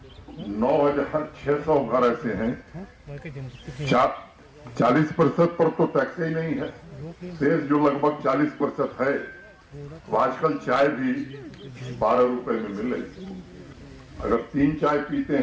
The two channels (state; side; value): identical; both; correlation 1.00